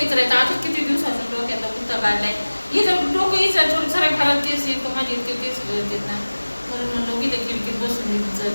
आता किती दिवसाचं डोक्याचा पुस्तक काढलाय. इथं डोकं इचरायचं सगळ्या घरात केस येतो. माझे इतके केस येतात ना, म्हणून म्हणलं की खिडकीत बसून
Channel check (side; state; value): both; inverted; correlation -1.00